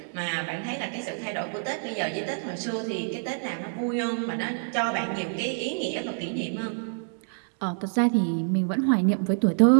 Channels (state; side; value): silent; left; digital silence